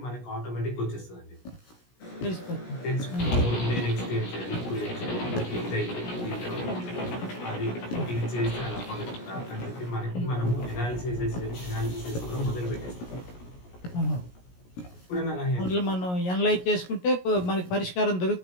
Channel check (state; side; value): late; right; 17 ms